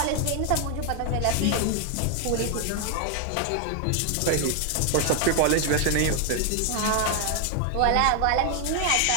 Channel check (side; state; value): both; different; correlation 0.01